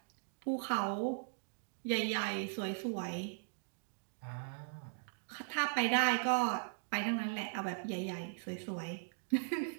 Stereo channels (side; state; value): left; silent; digital silence